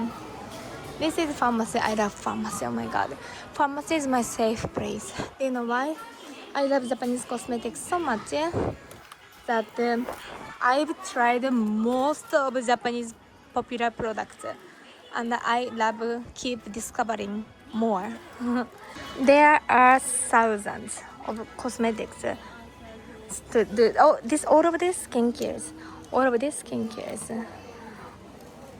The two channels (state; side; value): identical; both; correlation 1.00